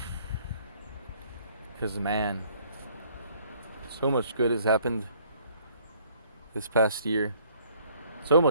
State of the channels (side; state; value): both; inverted; correlation -0.60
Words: Because, man, so much good has happened this past year. So